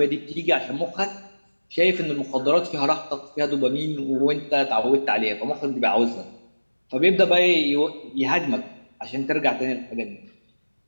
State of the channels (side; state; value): both; inverted; correlation -1.00